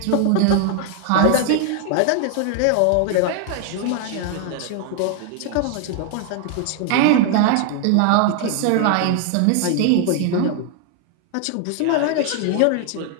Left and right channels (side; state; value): both; different; correlation 0.00